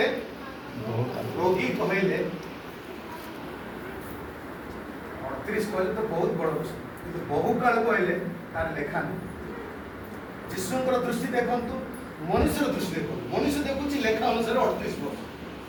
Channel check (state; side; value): identical; both; correlation 1.00